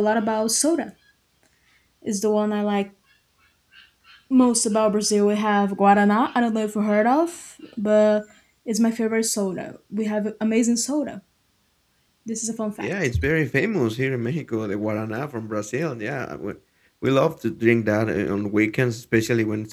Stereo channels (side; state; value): both; identical; correlation 1.00